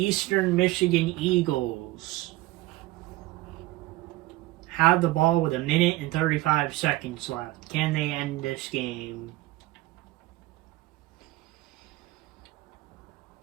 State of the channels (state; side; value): quieter; left; 18.3 dB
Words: Michigan Eagles have the ball with 1 minute and 35 seconds left. Can they end this game?